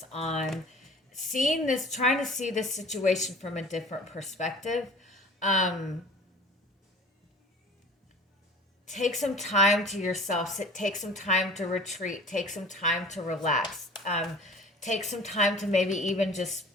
on seeing this, trying to see this situation from a different perspective. Take some time to yourself. Take some time to retreat. Take some time to relax. Take some time to maybe even just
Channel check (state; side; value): normal; both; correlation 0.43